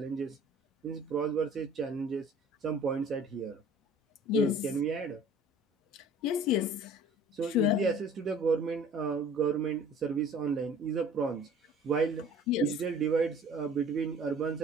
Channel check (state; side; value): normal; both; correlation 0.49